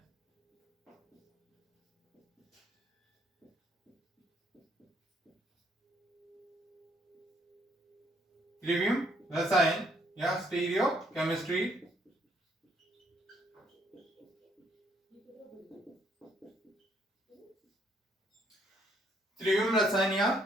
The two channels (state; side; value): normal; both; correlation 0.69